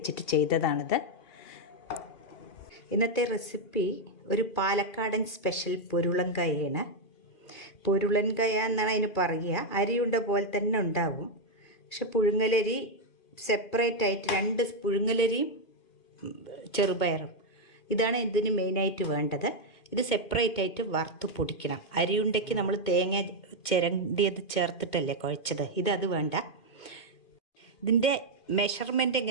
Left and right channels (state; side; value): late; right; 2.4 ms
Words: ചെയ്തതാണിത്. ഇന്നത്തെ റെസിപ്പി ഒരു പാലക്കാടൻ സ്പെഷ്യൽ പൊരുളൻകായാണ്. പൊരുളൻകായ എന്നാണ് അതിന് പറയുക. അരിയുണ്ട പോലെ തന്നെ ഉണ്ടാവും. പക്ഷെ പുഴുങ്ങലരി സെപ്പറേറ്റ് ആയിട്ട്, രണ്ട് പുഴുങ്ങലരിയും ചെറുപയറും ഇതാണ് ഇതിന് മെയിനായിട്ട് വേണ്ടത്. ഇത് സെപ്പറേറ്റ് ആയിട്ട് വറുത്ത് പൊടിക്കണം. അരിയുണ്ടയ്ക്ക് നമ്മൾ തേങ്ങ ചിരണ്ടിയത് ചേർത്തിട്ടല്ലേ കുഴച്ചത്, അത് വേണ്ട. ഇതിൻ്റെ മെഷർമെൻറ്റ്